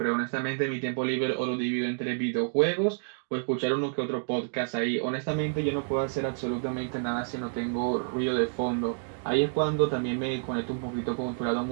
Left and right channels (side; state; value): left; silent; digital silence